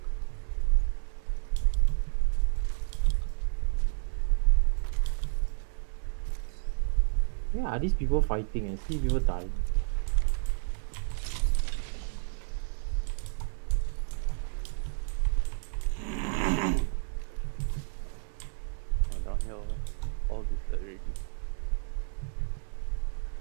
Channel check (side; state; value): left; silent; 57 dB below the other